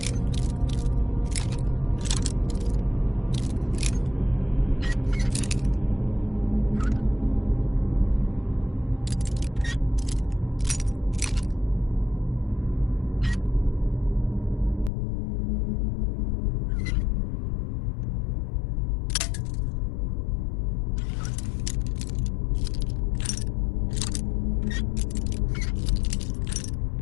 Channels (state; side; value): drops out; right; at 14.9 s